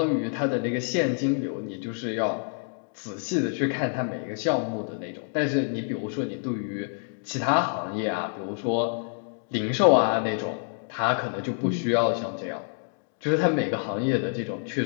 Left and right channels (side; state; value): right; silent; 60 dB below the other